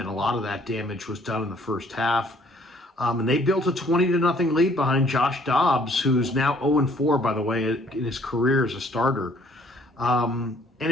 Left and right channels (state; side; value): normal; both; correlation 0.60